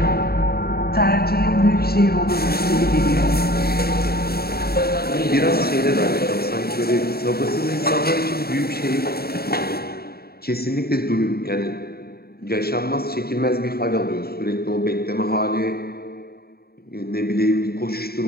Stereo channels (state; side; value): late; right; 0.45 ms